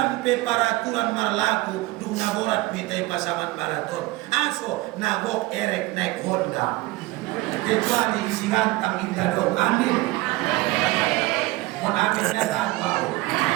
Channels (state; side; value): quieter; left; 20.4 dB